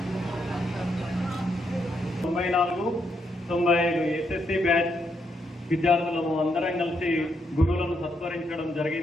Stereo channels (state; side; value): normal; both; correlation 0.78